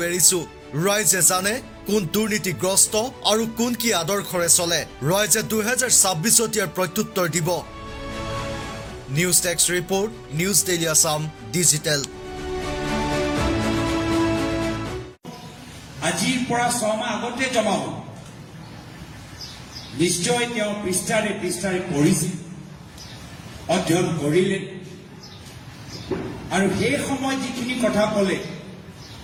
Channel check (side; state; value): both; identical; correlation 1.00